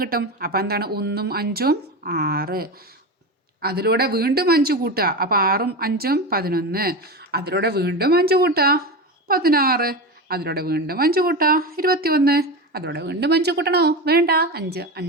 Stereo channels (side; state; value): both; normal; correlation 0.21